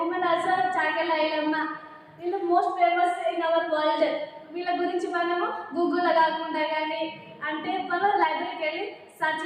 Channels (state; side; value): identical; both; correlation 1.00